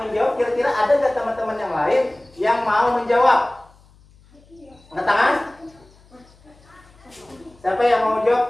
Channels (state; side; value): noise; left; hum, 28 dB below the sound